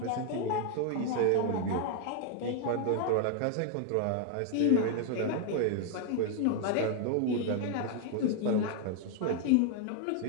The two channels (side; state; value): both; different; correlation 0.00